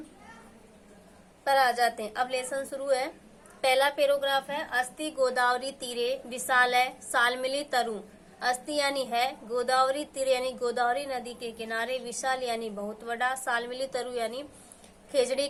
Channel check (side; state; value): both; identical; correlation 1.00